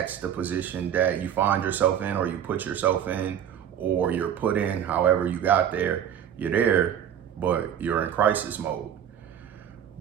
the position that you find yourself in, or you put yourself in, or you're put in. However you got there, you're there, but you're in crisis mode.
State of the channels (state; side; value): quieter; left; 9.5 dB